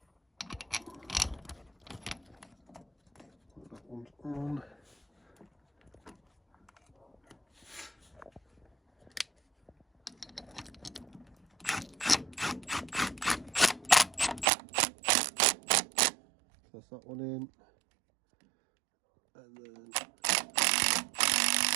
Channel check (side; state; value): left; drops out; at 14.5 s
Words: That one's on. That's that one in. And then